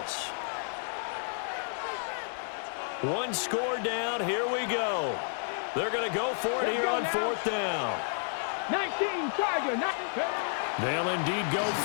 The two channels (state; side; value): silent; right; 57 dB below the other